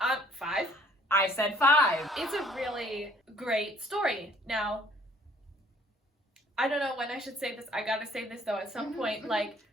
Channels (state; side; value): normal; both; correlation 0.58